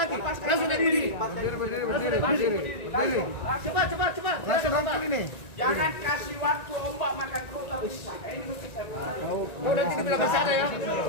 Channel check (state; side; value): late; right; 1.9 ms